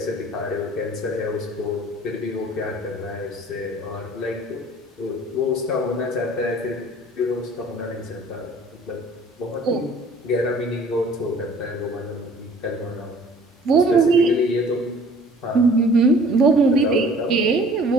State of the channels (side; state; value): both; normal; correlation 0.51